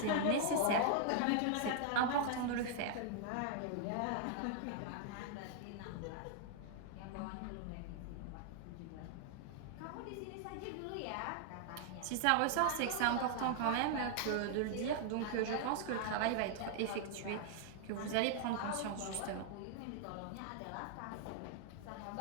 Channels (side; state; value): both; different; correlation -0.01